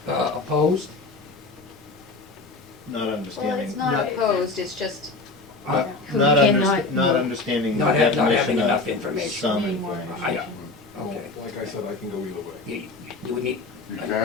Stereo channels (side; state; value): right; quieter; 3.6 dB